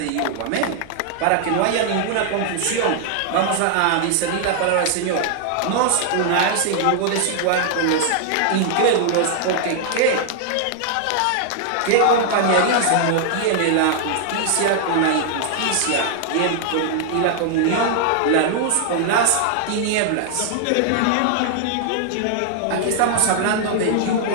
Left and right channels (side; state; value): both; different; correlation 0.00